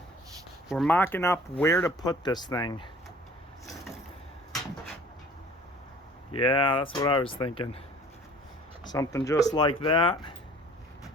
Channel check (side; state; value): both; normal; correlation 0.49